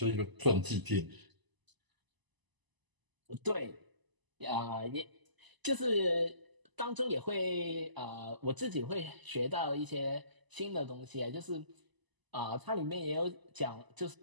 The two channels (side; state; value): left; late; 1.0 ms